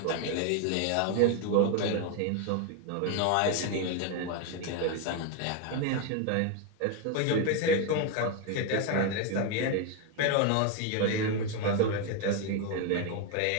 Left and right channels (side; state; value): both; different; correlation 0.01